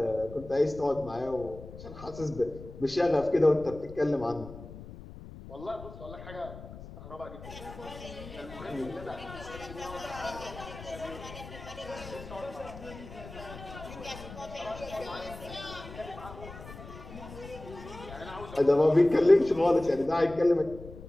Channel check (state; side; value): noise; left; rumble, 14 dB below the sound